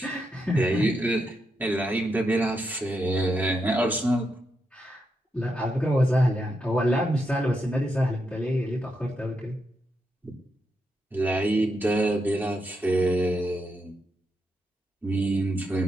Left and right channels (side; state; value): both; normal; correlation 0.83